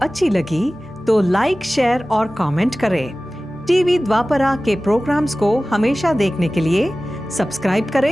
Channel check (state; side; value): normal; both; correlation 0.97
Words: लगी तो लाइक, शेयर और कमेंट करें। टीवी द्वापरा के प्रोग्राम्स को हमेशा देखने के लिए सब्सक्राइब